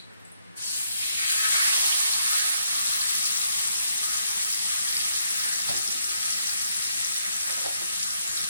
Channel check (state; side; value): inverted; both; correlation -0.72